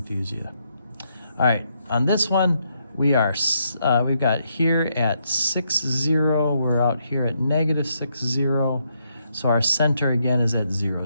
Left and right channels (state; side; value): inverted; both; correlation -0.77